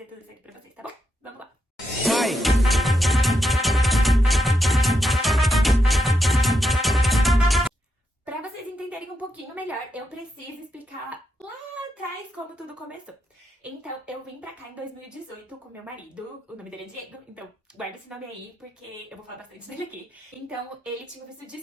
tudo isso aqui pra vocês, tá bom? Vamos lá! Pra vocês entenderem um pouquinho melhor, eu preciso explicar lá atrás como tudo começou. Então, eu vim pra cá em 2018 com meu marido, o nome dele é Diego, então guarda esse nome aí porque eu vou falar bastante dele aqui. Então, ele tinha o visto de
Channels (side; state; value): both; normal; correlation 0.83